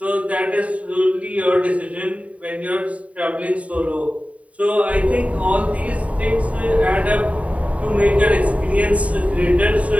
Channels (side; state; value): left; late; 0.067 ms